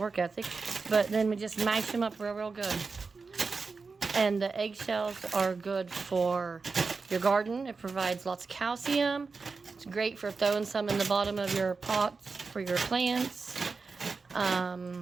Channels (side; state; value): left; quieter; 4.5 dB